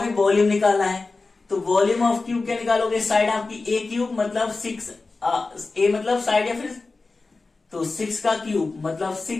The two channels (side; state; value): right; quieter; 3.7 dB